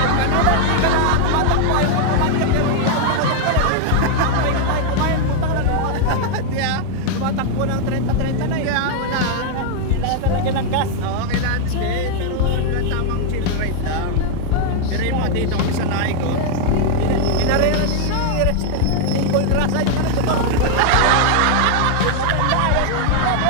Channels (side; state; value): both; different; correlation 0.00